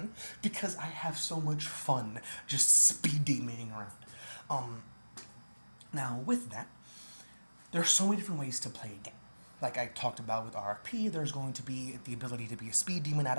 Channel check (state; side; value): inverted; both; correlation -1.00